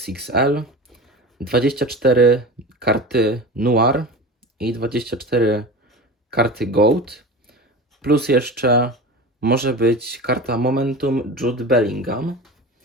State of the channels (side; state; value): both; normal; correlation 0.31